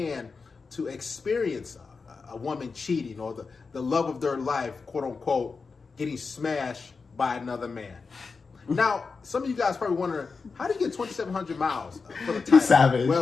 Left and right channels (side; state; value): right; quieter; 4.7 dB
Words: to experience a woman cheating or the love of their life, quote unquote, getting smashed by another man. Now, some of you guys probably wondering, how do you get 2,700 miles for the title? Savage.